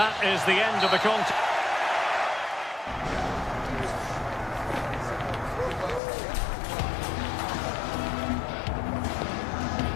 is the end of the contest.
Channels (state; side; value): drops out; right; at 6.0 s